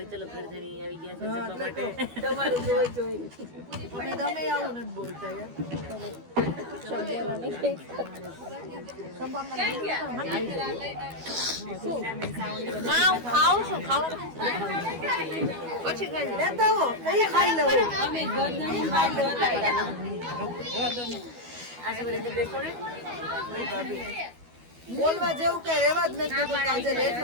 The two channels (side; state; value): left; late; 12 ms